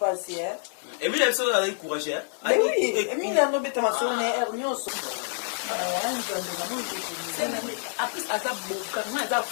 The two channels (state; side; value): silent; right; 60 dB below the other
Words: Emile biso azalaki courage Emile anobeta masolo na air nyonso aza boka nga aza